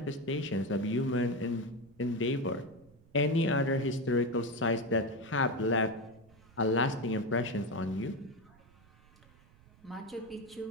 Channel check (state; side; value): noise; right; rumble, 27 dB below the sound